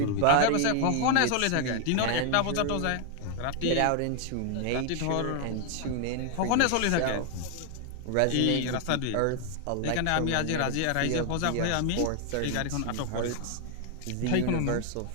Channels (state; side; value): different; both; correlation 0.00